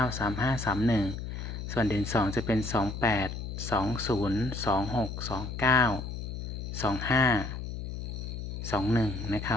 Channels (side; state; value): left; noise; hum, 6 dB below the sound